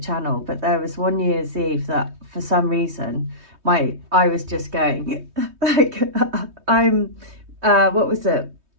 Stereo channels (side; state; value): left; late; 3.2 ms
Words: but there was one New Year's Eve that for some reason I was just going like what was it?